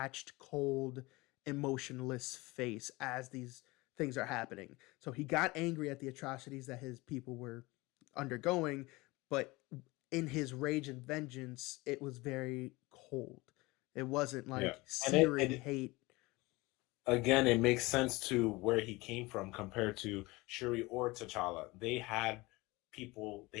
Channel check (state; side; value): quieter; right; 22.5 dB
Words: cold, emotionless face as these things are happening. So he got angry at the atrocities that his people were undergoing, but in his rage and vengeance, it was very cold. It wasn't Yeah. like And searing hate. again, it makes sense to where he came from compared to Shuri or T'Challa. They had